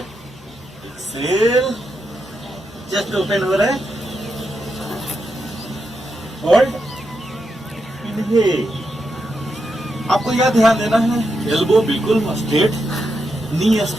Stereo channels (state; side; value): normal; both; correlation 0.84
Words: चेस्ट ओपन हो रहा है, होल्ड, इनहेल। आपको यह ध्यान देना है एल्बो बिल्कुल स्ट्रेट, नी